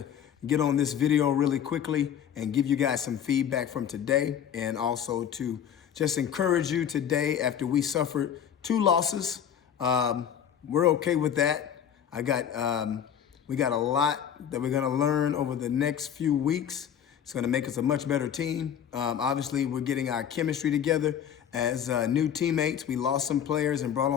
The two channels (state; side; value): quieter; right; 9.0 dB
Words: get on this video really quickly and give you guys some feedback from today, and also to just encourage you today after we suffered 2 losses. We're okay with that. We got a lot that we're gonna learn over the next few weeks. It's gonna make us a much better team. Obviously, we're getting our chemistry together as new teammates. We lost some players and brought